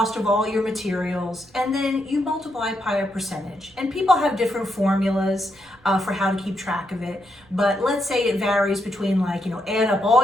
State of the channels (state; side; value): noise; right; rumble, 29 dB below the sound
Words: of all your materials and then you multiply by a percentage. And people have different formulas for how to keep track of it. But let's say it varies between add up